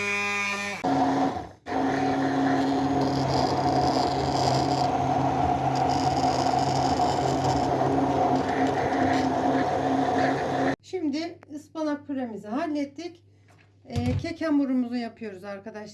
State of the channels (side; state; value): both; identical; correlation 1.00